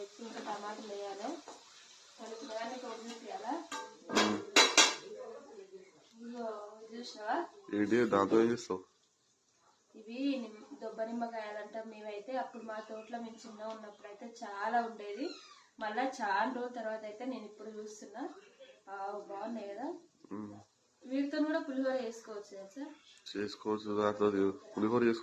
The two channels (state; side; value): identical; both; correlation 1.00